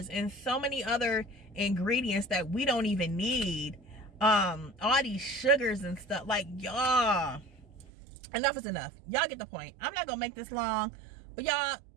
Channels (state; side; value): drops out; left; at 7.9 s